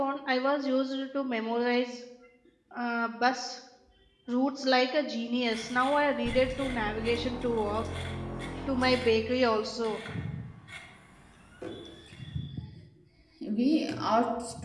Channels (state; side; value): identical; both; correlation 1.00